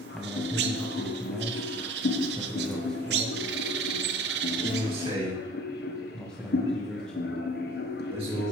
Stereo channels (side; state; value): both; normal; correlation 0.46